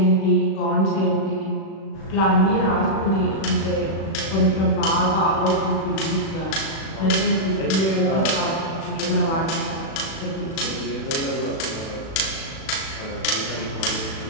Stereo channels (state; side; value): late; right; 36 ms